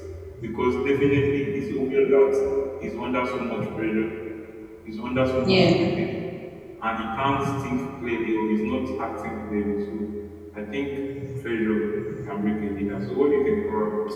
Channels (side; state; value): both; identical; correlation 1.00